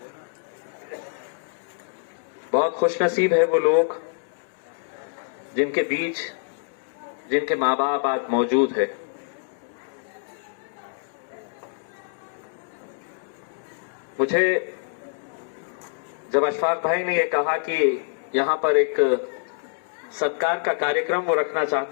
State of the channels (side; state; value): right; silent; digital silence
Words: बहुत खुशनसीब है वो लोग जिनके बीच जिनके माँ बाप आज मौजूद है। मुझे जब अशफाक भाई ने यह कहा कि यहां पर एक सत्कार का कार्यक्रम वो रखना